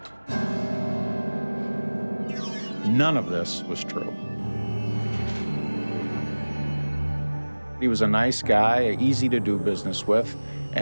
None of this was true. He was a nice guy, easy to do business with,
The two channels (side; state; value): both; inverted; correlation -1.00